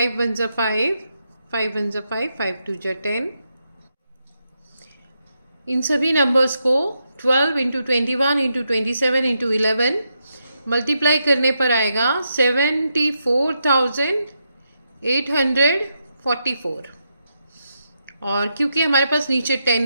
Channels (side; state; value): both; inverted; correlation -0.83